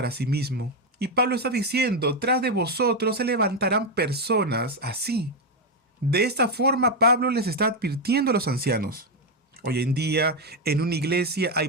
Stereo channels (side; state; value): both; normal; correlation 0.06